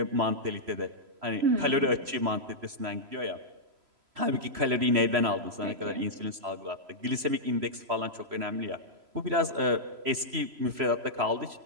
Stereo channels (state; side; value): late; left; 3.0 ms